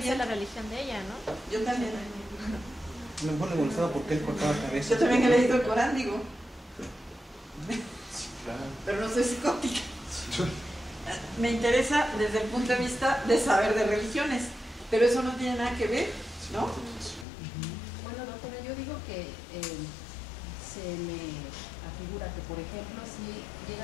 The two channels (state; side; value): drops out; right; at 17.2 s